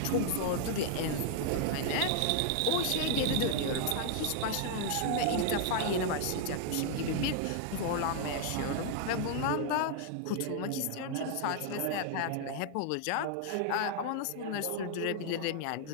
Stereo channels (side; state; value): both; different; correlation 0.00